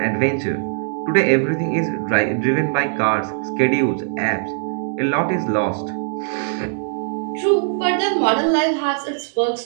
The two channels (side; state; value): left; silent; digital silence